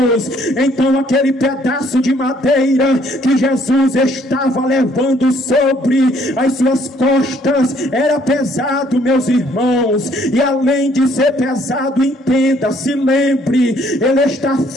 Então aquele pedaço de madeira que Jesus estava levando sobre as suas costas era pesado, meus irmãos. E além de ser pesado, entenda, se lembre, ele está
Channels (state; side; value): normal; both; correlation 0.64